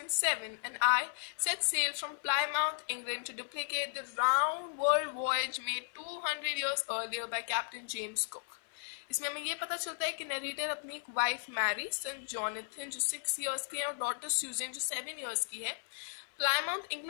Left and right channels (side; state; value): right; silent; 54 dB below the other